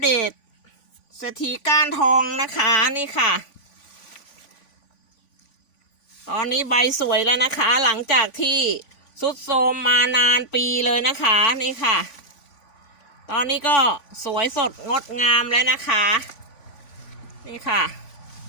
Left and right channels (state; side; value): late; right; 3.5 ms